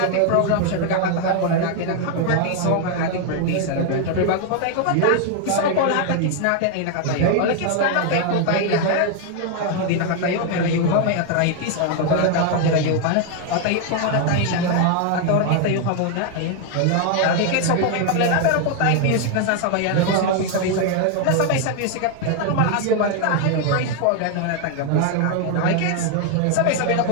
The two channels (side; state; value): both; different; correlation 0.00